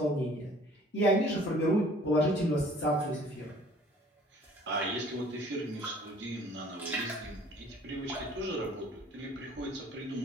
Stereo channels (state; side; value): normal; both; correlation 0.53